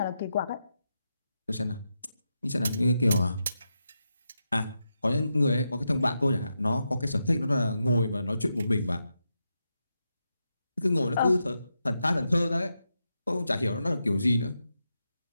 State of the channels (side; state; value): both; inverted; correlation -0.87